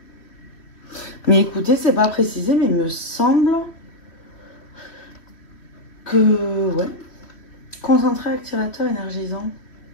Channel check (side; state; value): right; late; 3.1 ms